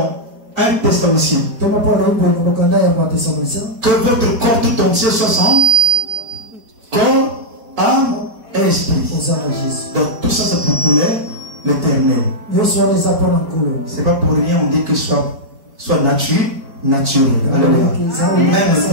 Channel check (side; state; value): left; late; 4.6 ms